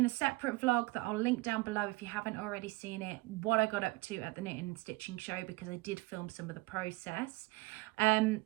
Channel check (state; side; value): quieter; left; 22.1 dB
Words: a separate vlog that I'll link down below if you haven't already seen it, what I got up to at the knitting and stitching show, because I did film some of the process.